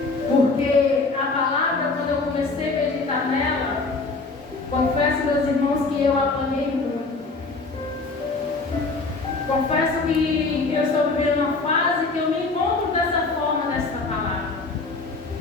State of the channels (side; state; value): right; quieter; 3.7 dB